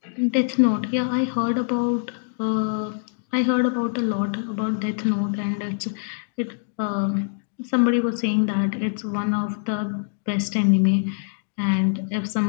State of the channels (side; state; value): right; silent; digital silence